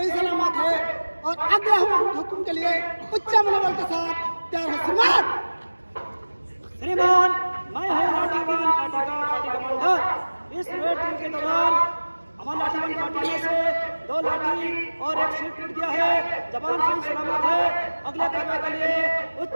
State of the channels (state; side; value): inverted; both; correlation -1.00